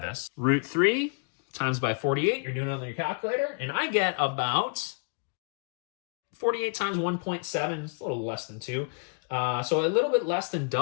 √3 times by 48, you're doing it on your calculator, and I get about 48 times 1.7, it's a little less than 2. So a little bit less than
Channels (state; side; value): quieter; right; 36.9 dB